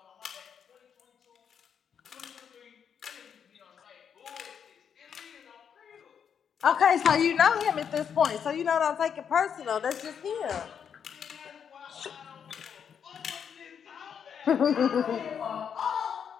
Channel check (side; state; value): right; quieter; 7.6 dB